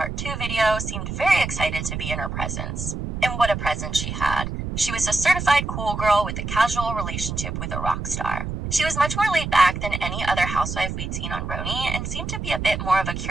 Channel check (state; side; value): noise; right; rumble, 5 dB below the sound